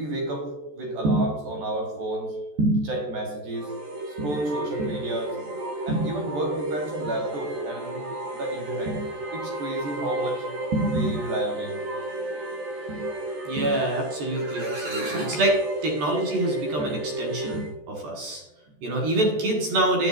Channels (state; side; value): late; left; 14 ms